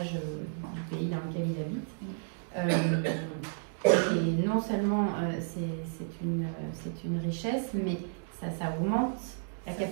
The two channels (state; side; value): silent; left; digital silence